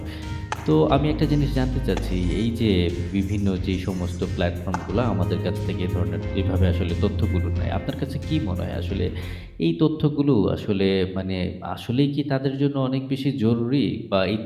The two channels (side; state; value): both; identical; correlation 1.00